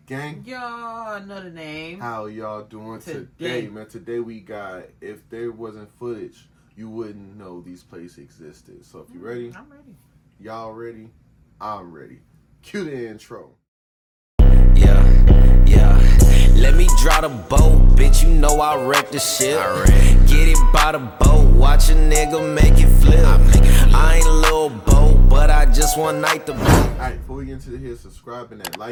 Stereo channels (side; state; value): both; identical; correlation 1.00